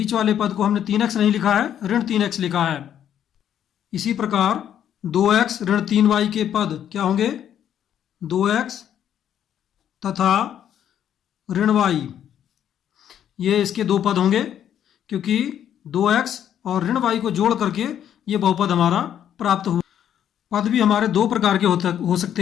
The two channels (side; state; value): right; quieter; 9.9 dB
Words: वाले पद को हमने 3x नहीं लिखा है, ऋण 3x लिखा है। इसी प्रकार 2x ऋण 3y के पद क्या होंगे? 2x तथा ऋण y, ये इसके 2 पद होंगे क्योंकि 2x और ऋण y को जोड़ करके ये बहुपद हमारा प्राप्त हुआ। पद भी हमारे दो प्रकार के हो